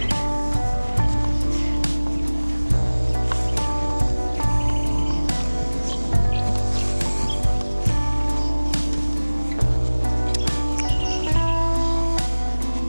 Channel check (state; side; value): inverted; both; correlation -1.00